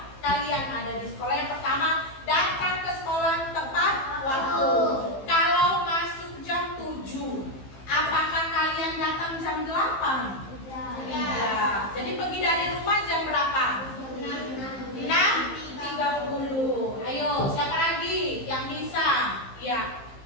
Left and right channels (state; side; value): late; right; 15 ms